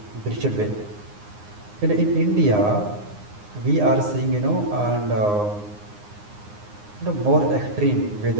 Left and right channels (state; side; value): late; left; 9.7 ms